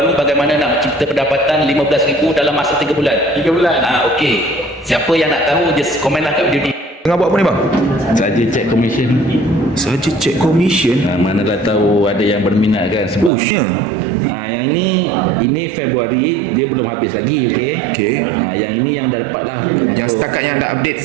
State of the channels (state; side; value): drops out; left; at 13.3 s